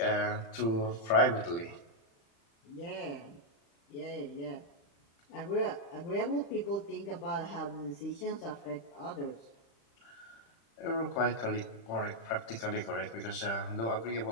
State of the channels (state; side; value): late; right; 35 ms